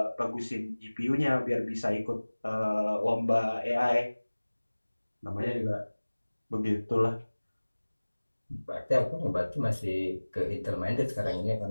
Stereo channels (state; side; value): inverted; both; correlation -1.00